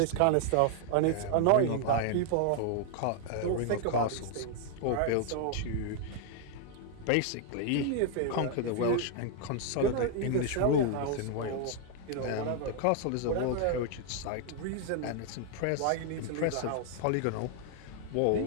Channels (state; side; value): different; both; correlation 0.00